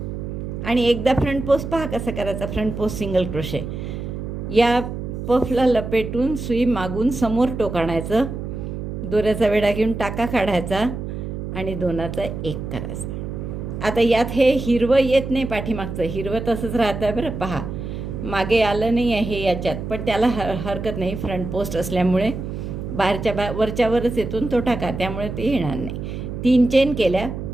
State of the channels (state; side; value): noise; right; hum, 6 dB below the sound